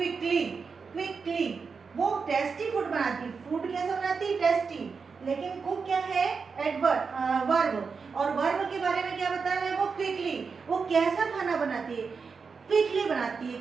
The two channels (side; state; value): left; quieter; 5.2 dB